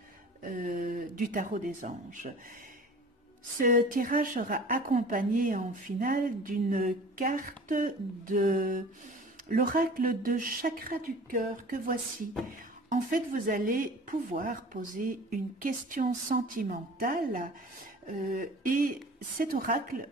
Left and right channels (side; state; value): both; normal; correlation 0.43